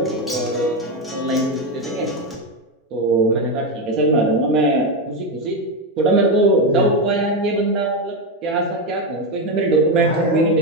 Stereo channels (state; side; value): normal; both; correlation 0.10